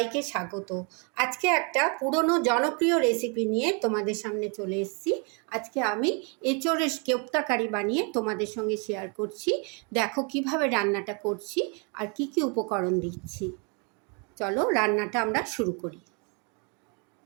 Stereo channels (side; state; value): left; quieter; 34.8 dB